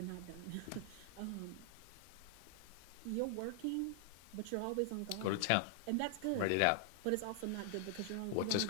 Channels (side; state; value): both; different; correlation 0.00